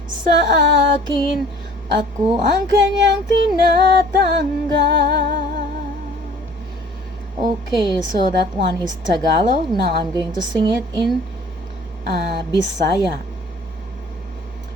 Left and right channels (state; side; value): normal; both; correlation 0.51